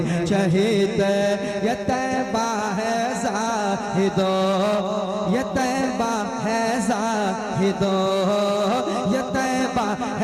चहीते ये तैबा है जाहिदो ये तैबा है जाहिदो ये तैबा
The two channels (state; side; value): identical; both; correlation 1.00